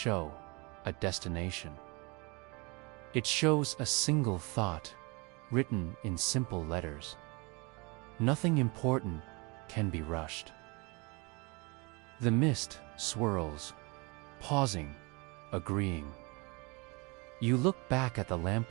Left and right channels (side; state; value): left; quieter; 28.3 dB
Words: a destination. It shows a single thought written in simple letters. Nothing important can be rushed. The mist swirls, pausing, agreeing. You look back at the